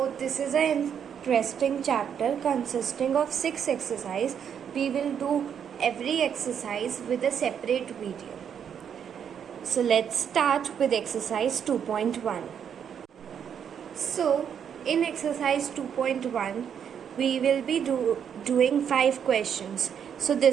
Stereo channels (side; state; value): left; quieter; 8.1 dB